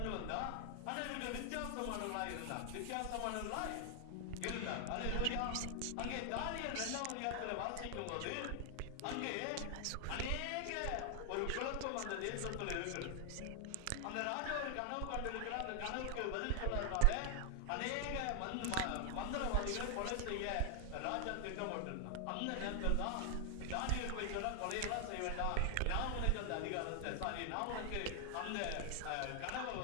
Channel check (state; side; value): different; both; correlation 0.00